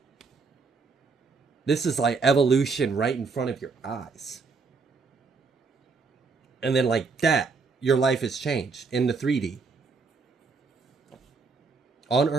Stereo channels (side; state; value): left; quieter; 4.6 dB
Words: This is like evolution right in front of your eyes. And then like that, your life has changed in the 3D. On